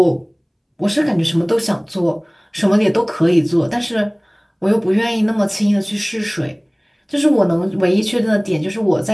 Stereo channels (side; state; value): both; identical; correlation 1.00